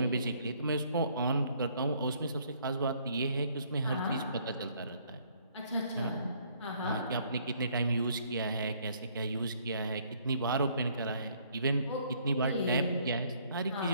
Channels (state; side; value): inverted; both; correlation -0.64